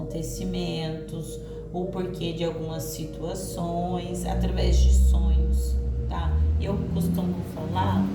ou porquê de algumas situações através de sonhos, tá? Eu costumo falar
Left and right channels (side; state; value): both; identical; correlation 1.00